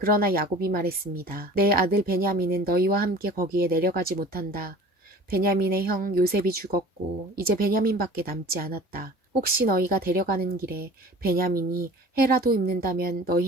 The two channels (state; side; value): normal; both; correlation 0.44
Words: 야곱이 말했습니다. 내 아들 베냐민은 너희와 함께 거기에 내려가지 못한다. 베냐민의 형 요셉이 죽었고 이제 베냐민밖에 남지 않았다. 혹시 너희가 데려가는 길에 베냐민이 해라도 입는다면